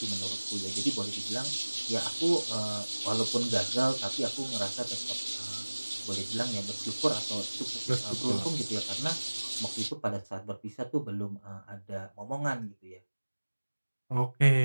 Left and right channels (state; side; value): inverted; both; correlation -1.00